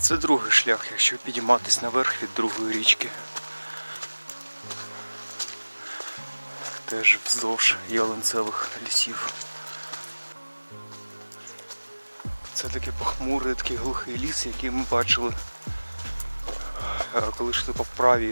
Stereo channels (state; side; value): inverted; both; correlation -1.00